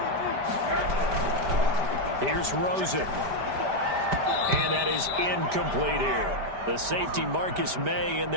Here's Rosen. And that is incomplete here. The safety Marcus May in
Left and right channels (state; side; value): late; left; 5.1 ms